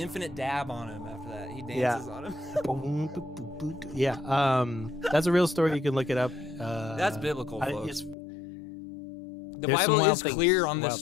dab on him after that. He dances on him. Yeah. That's a real story. You can look it up. That's biblical, folks. The Bible is clear on this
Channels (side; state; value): right; drops out; at 8.2 s